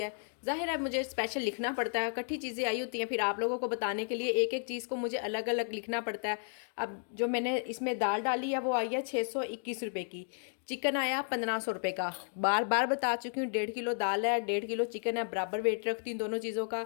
है। ज़ाहिर है मुझे स्पेशल लिखना पड़ता है, इकट्ठी चीज़ें आई होती हैं, फिर आप लोगों को बताने के लिए एक एक चीज़ को मुझे अलग अलग लिखना पड़ता है। अब जो मैंने इसमें दाल डाली है वो आई है 621 रुपये की, चिकन आया 1500 रुपये का। बार बार बता चुकी हूँ 1.5 किलो दाल है, 1.5 किलो चिकन है, बराबर वेट रखती हूँ दोनों चीज़ों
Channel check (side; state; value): right; silent; 56 dB below the other